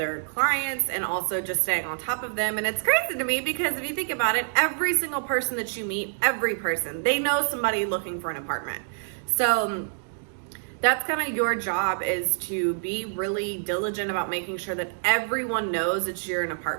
clients and also just staying on top of them. And it's crazy to me because if you think about it, every single person that you meet, they know somebody looking for an apartment. So that's kind of your job, is to be really diligent about making sure that everyone knows that you're an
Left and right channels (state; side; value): silent; left; digital silence